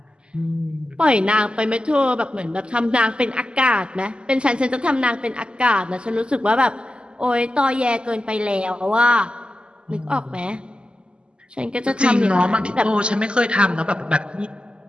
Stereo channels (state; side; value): late; left; 0.051 ms